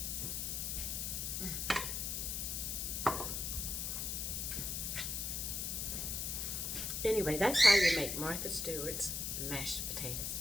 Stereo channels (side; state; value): left; noise; hiss, 2 dB below the sound